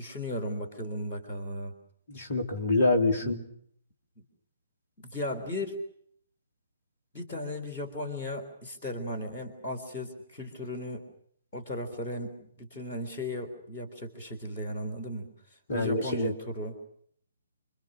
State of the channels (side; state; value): both; inverted; correlation -0.57